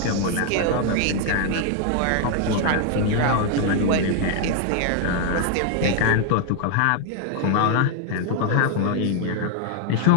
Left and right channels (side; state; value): both; different; correlation 0.00